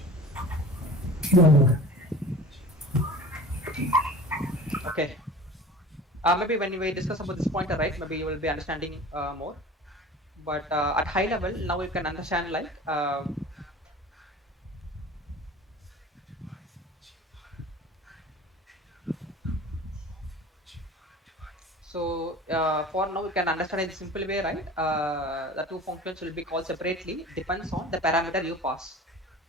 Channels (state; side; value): normal; both; correlation 0.40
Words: Yeah. Okay. Maybe when we discuss about this pointer, right, maybe you will be understanding more. But at high level, now you can understand like so for now you can understand in simple way, right? The two functions will be called separately, depends on the parameter you pass.